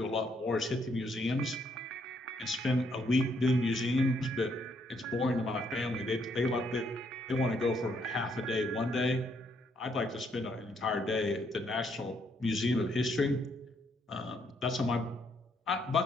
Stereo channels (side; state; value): both; normal; correlation 0.72